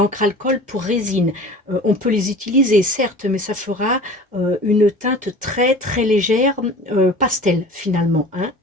alcool pour résine. On peut les utiliser, certes, mais ça fera une teinte très très légère, pastel finalement. Hein.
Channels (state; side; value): normal; both; correlation 0.41